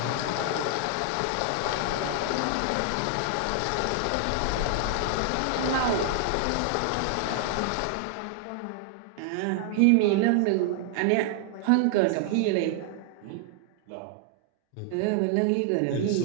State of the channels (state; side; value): different; both; correlation 0.00